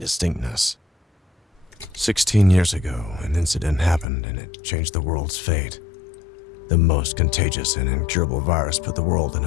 16 years ago, an incident happened and it changed the world's fate. The most contagious and incurable virus put the world on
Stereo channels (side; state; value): right; drops out; at 4.0 s